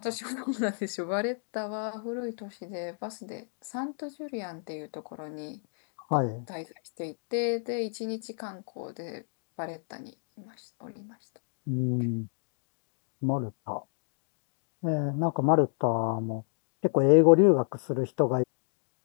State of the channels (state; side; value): silent; right; 57 dB below the other